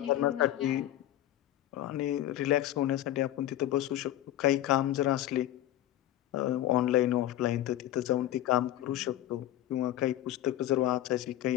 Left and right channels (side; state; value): right; quieter; 13.4 dB